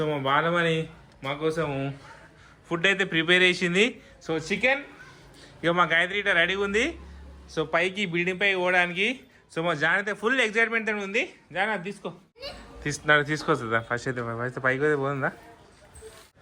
మా బాలమని మా కోసం ఫుడ్ అయితే ప్రిపేర్ చేసింది. సో చికెన్, ఇక మా గాయత్రి ఇట్లా రెడీగా ఉంది. సో పైకి బిల్డింగ్ పైకి పోవడానికి. సో మా జాన్ అయితే ఫుల్ ఎక్సైట్మెంట్ అని ఉంది. జాన్ అది తీసుకొస్తుందా ఫస్ట్ అయితే పైకి అయితే పోతుందా.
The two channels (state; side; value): identical; both; correlation 1.00